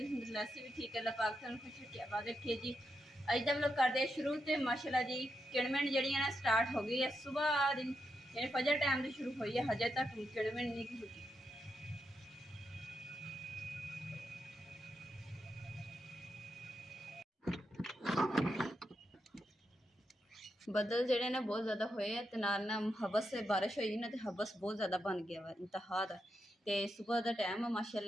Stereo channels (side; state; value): both; normal; correlation 0.84